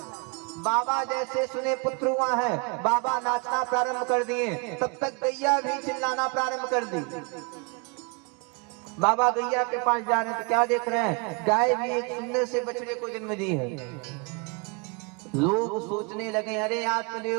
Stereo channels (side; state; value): left; quieter; 32.4 dB